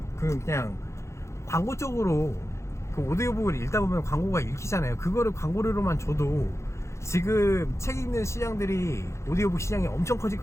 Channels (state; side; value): late; right; 0.14 ms